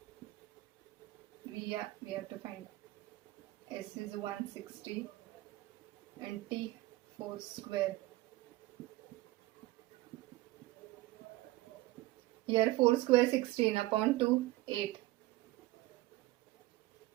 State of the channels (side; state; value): left; quieter; 18.9 dB